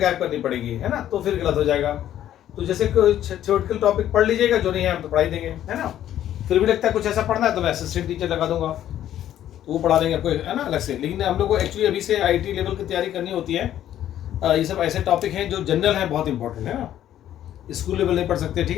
करनी पड़ेगी है ना, तो फिर गलत हो जाएगा। तो जैसे कोई थ्योरेटिकल टॉपिक पढ़ लीजिएगा, जो नहीं है हम तो पढ़ाई देंगे है ना। फिर भी लगता है कुछ ऐसा पढ़ना है तो मैं असिस्टेंट टीचर लगा दूंगा, तो वो पढ़ा देंगे आपको है ना अलग से। लेकिन हम लोग को एक्चुअली अभी से IT लेवल की तैयारी करनी होती है। ये सब ऐसे टॉपिक हैं जो जनरल है, बहुत इंपॉर्टेंट है ना, स्कूल लेवल नहीं पढ़ सकते, ठीक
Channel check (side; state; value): right; quieter; 11.7 dB